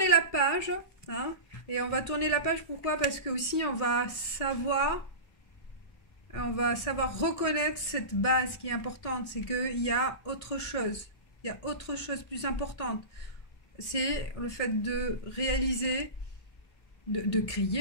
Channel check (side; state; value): right; late; 1.6 ms